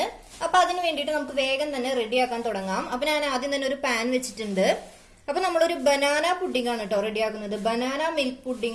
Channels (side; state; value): both; identical; correlation 1.00